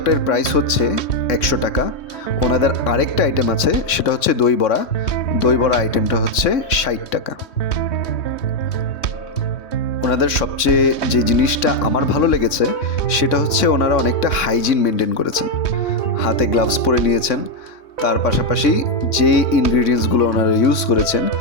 প্রাইস হচ্ছে 100 টাকা। ওনাদের আরেকটা আইটেম আছে, সেটা হচ্ছে দই বড়া। দই বড়া আইটেমটা হচ্ছে 60 টাকা। ওনাদের সবচেয়ে যে জিনিসটা আমার ভালো লেগেছে সেটা হচ্ছে ওনারা অনেকটা হাইজিন মেনটেন করেছেন। হাতে গ্লাভস পরে নিয়েছেন, তার পাশাপাশি যে ইনগ্রিডিয়েন্টসগুলো ওনারা ইউজ করেছেন,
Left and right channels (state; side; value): late; right; 3.6 ms